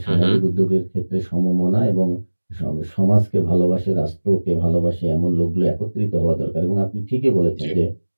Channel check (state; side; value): inverted; both; correlation -1.00